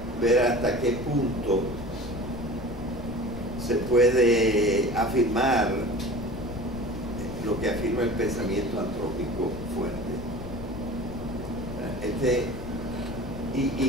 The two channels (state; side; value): noise; left; rumble, 10 dB below the sound